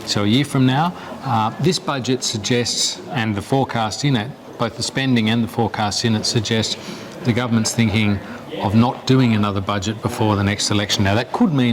so a year from now. This budget suggests, and the forecast in it, both the spending and the forecast in it suggest the government's thinking of not doing another budget before the next election. Now, that could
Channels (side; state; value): both; identical; correlation 1.00